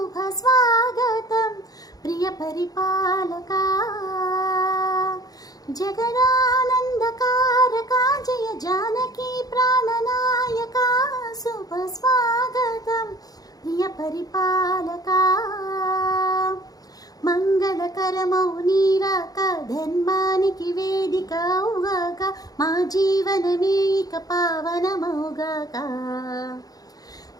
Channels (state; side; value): late; right; 0.18 ms